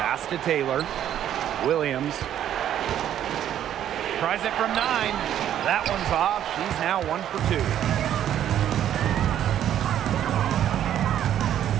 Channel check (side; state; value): left; quieter; 10.8 dB